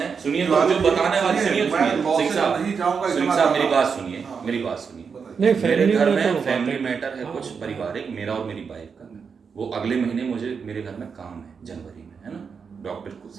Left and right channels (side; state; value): left; quieter; 5.9 dB